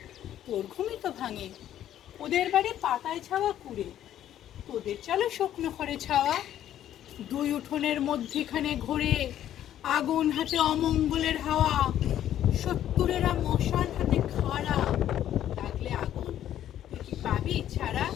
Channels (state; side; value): quieter; right; 11.5 dB